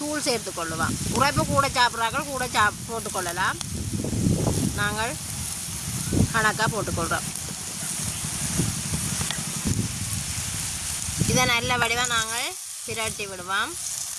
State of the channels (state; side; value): identical; both; correlation 1.00